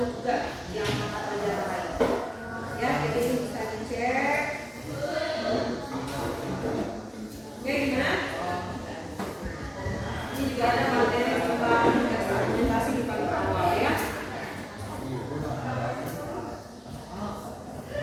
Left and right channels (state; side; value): identical; both; correlation 1.00